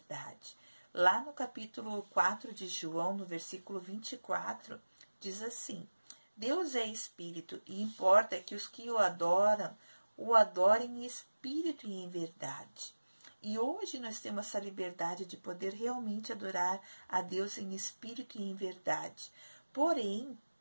Lá no capítulo 4 de João, no versículo 24, diz assim: Deus é espírito e importa que os que o adorem em espírito e em verdade. E hoje nós temos essa liberdade de poder realmente adorar a Deus em espírito e em verdade. Porém,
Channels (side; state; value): both; inverted; correlation -1.00